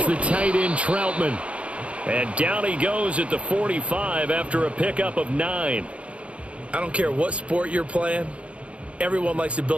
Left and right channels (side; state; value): left; late; 0.061 ms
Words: the tight end Troutman. And down he goes at the 45 after a pickup of 9. I don't care what sport you're playing. Everyone likes to